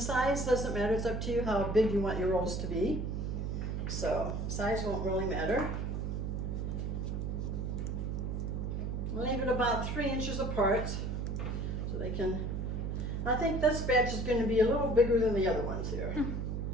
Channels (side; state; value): right; noise; hum, 2 dB below the sound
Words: doesn't matter, it's up to you how big you want your rolls to be. So size won't really matter. Leave it about 3 inches apart so they can, I think this batch is going to be a little bigger than the other ones here.